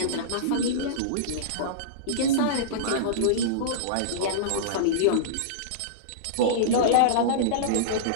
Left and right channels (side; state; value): both; different; correlation -0.04